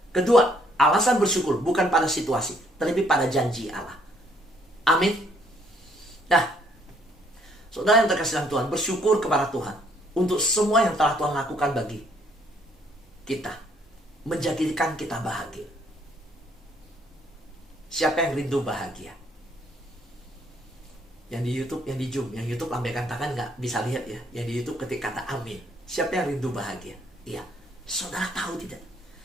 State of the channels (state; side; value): normal; both; correlation 0.66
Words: Kedua, alasan bersyukur bukan pada situasi, tetapi pada janji Allah. Amin. Nah, saudara yang terkasih Tuhan, bersyukur kepada Tuhan untuk semua yang telah Tuhan lakukan bagi kita, menjadikan kita bahagia. Siapa yang rindu bahagia? Yang di YouTube, yang di Zoom, yang YouTube lambaikan tangan nggak bisa lihat ya. Yang di YouTube ketik kata amin. Siapa yang rindu bahagia? Iya. Saudara tahu tidak?